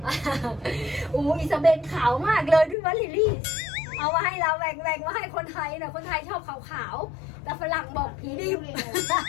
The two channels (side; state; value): right; drops out; at 2.8 s